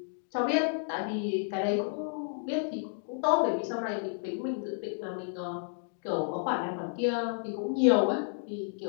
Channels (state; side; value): silent; right; digital silence